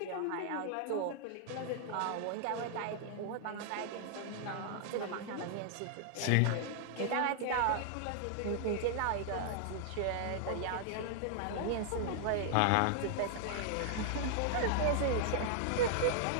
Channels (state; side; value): different; both; correlation -0.01